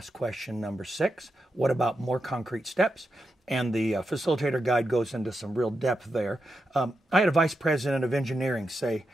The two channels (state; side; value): normal; both; correlation 0.87